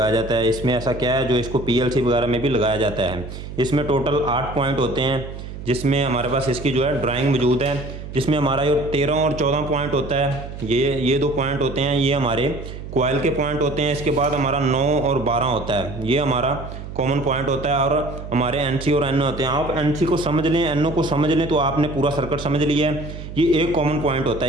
जाता है। इसमें ऐसा क्या है जो इसको पीएलसी वगैरह में भी लगाया जाता है। इसमें टोटल 8 पॉइंट होते हैं, जिसमें हमारे पास इसकी जो है ड्राइंग मौजूद है, जिसमें हमारा जो 13 और 14 पॉइंट होता है, ये 2 पॉइंट होते हैं, ये हमारे कोयल के पॉइंट होते हैं। इसके बाद हमारा 9 और 12 होता है, ये हमारा कॉमन पॉइंट होता है और हमारे एनसी और एनओ होते हैं। आप एनसी को समझ लें, एनओ को समझ लें तो आपने पूरा सर्किट समझ लिया है। ये एक कॉमन पॉइंट होता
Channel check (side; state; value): right; noise; hum, 10 dB below the sound